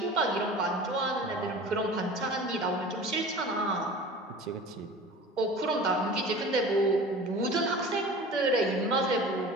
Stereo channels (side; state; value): both; normal; correlation 0.39